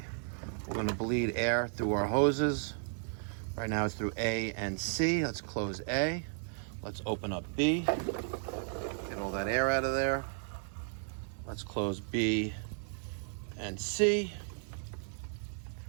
We're going to bleed air through our hoses. Right now it's through A and C. Let's close A. Let's open up B. Get all that air out of there. Let's close B and C.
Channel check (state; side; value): silent; left; digital silence